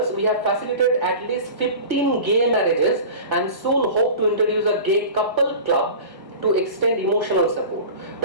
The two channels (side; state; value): left; late; 1.0 ms